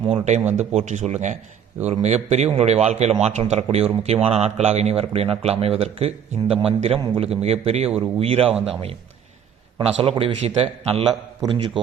3 டைம் போற்றி சொல்லுங்கள். இது ஒரு மிகப்பெரிய உங்களுடைய வாழ்க்கையில் மாற்றம் தரக்கூடிய ஒரு முக்கியமான நாட்களாக இனி வரக்கூடிய நாட்கள் அமைவதற்கு இந்த மந்திரம் உங்களுக்கு மிகப்பெரிய ஒரு உயிராக அமையும். இப்போ நான் சொல்லக்கூடிய விஷயத்த நல்லா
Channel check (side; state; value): left; quieter; 8.4 dB